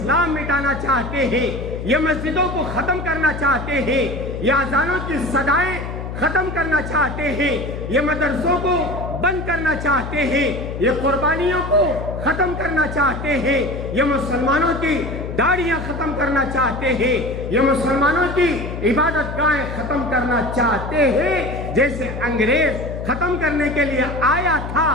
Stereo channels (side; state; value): left; noise; hum, 7 dB below the sound